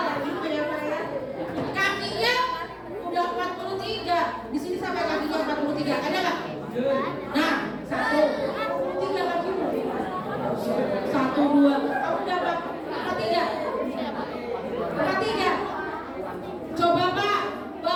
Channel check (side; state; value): both; identical; correlation 1.00